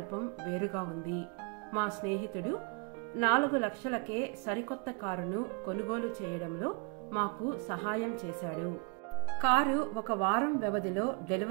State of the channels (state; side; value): quieter; left; 31.5 dB